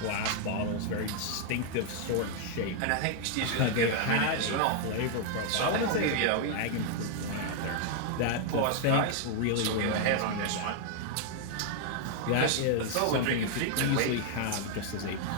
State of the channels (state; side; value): different; both; correlation 0.00